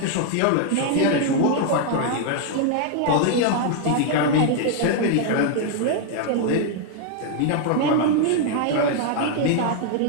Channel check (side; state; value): both; different; correlation 0.00